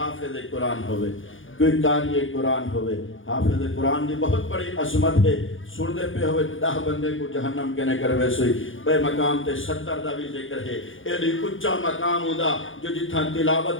قرآن ہوئے، کوئی قاری قرآن ہوئے۔ حافظ قرآن دی بہت بڑی عظمت ہے، سن دے پہ ہوئے 10 بندے کو جہنم کہنے کر ویسے بے مقام تے 70 دا بھی ذکر ہے۔ ایڈی اچھا مقام ہودا جو جتھا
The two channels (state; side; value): late; right; 0.58 ms